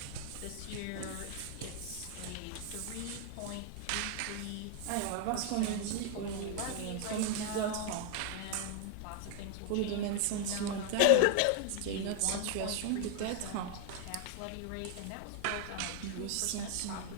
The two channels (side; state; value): both; different; correlation 0.00